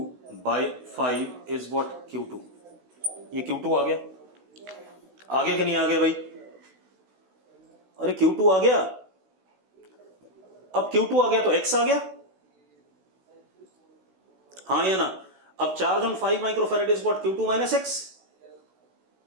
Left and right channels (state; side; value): late; left; 16 ms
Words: बाय 5 इज व्हाट? Q2। ये Q2 आ गया। आ गया कि नहीं आ गया भाई? अरे Q2 आ गया। अब Q2 आ गया तो x आ गया, हाँ या ना? अब charge on 5 microfarad is what? Q2 minus x,